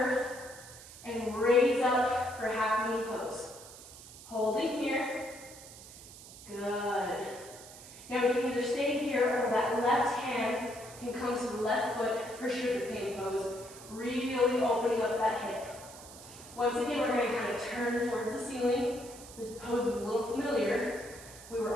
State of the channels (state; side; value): noise; right; hiss, 17 dB below the sound